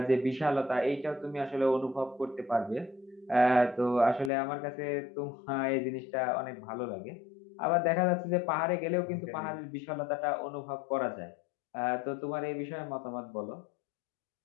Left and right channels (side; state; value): right; drops out; at 4.3 s